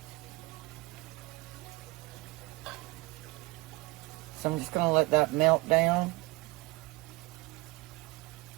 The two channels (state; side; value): quieter; left; 23.2 dB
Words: So I'm just going to let that melt down.